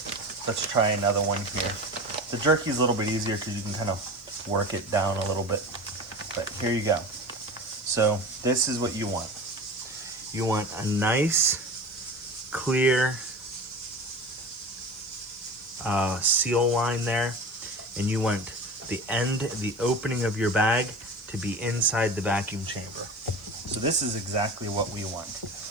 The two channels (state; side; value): noise; left; hiss, 27 dB below the sound